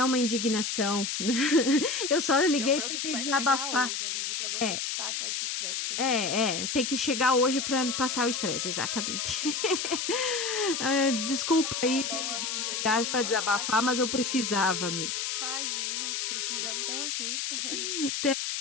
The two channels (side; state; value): left; noise; hiss, 2 dB below the sound